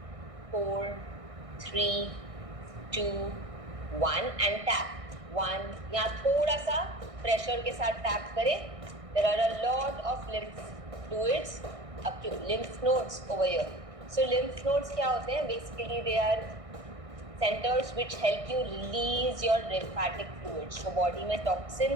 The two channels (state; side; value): late; left; 1.6 ms